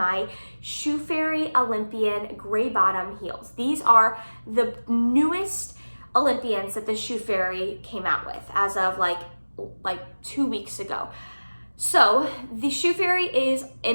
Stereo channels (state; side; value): inverted; both; correlation -1.00